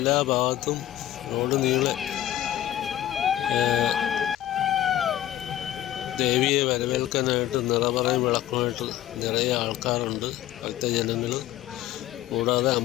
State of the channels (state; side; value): quieter; right; 12.9 dB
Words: ഭാഗത്തും റോഡ് നീളെ ദേവിയെ വരവേൽക്കാനായിട്ട് നിറപറയും വിളക്കുമായിട്ട് നിറയെ ആൾക്കാരുണ്ട്, ഭക്തജനങ്ങൾ. കൂടാതെ